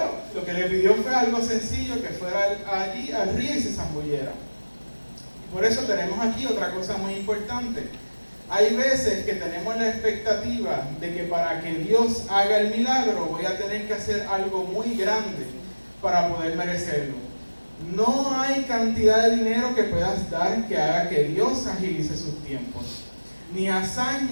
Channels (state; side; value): inverted; both; correlation -1.00